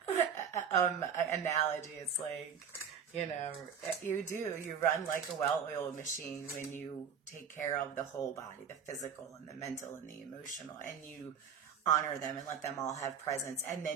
analogy. It's like, you run like a well-oiled machine when you take care of the whole body, the physical and the mental and the emotional, and you honor them and let them all have presence. And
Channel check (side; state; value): left; quieter; 7.2 dB